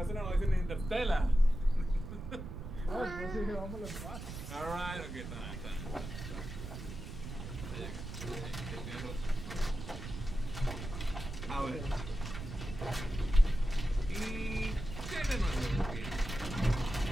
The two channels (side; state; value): right; noise; rumble, 8 dB below the sound